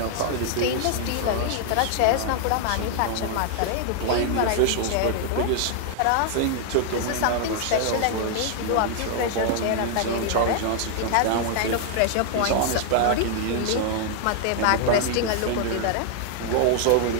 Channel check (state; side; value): different; both; correlation 0.00